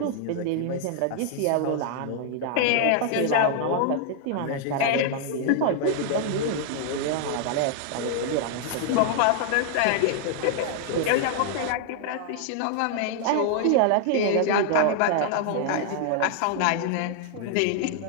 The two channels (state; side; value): different; both; correlation 0.00